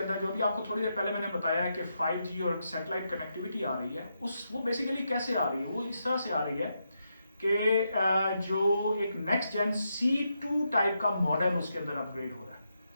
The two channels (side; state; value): both; inverted; correlation -0.83